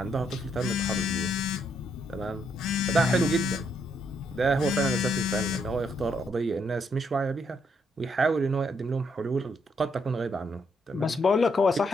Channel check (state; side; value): normal; both; correlation 0.75